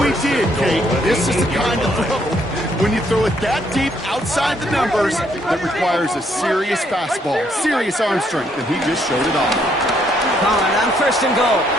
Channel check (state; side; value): normal; both; correlation 0.70